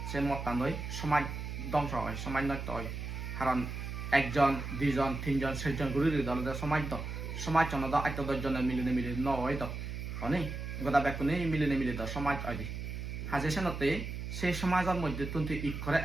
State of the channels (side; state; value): right; noise; hum, 6 dB below the sound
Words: সে মদটা নয় সমাজ ধ্বংস হয় সমাজ নষ্ট হয় কারণ একজন দুইজন তিনজন চারজন ঘুরি দলে সমাজ দ সমাজ জন দ আত্ম দশজনে মিলিনে নয় দ অনেক গোটা বেকুনে মিলিনে মিলি দ সমাজ হয় দি হাজে সেনতে সেই সমাজের মধ্যে তুই ইকরে